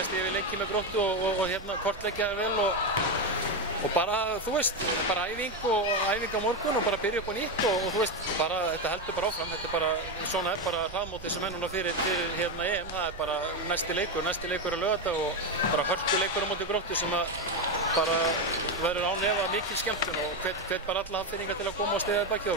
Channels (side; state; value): right; noise; rumble, 15 dB below the sound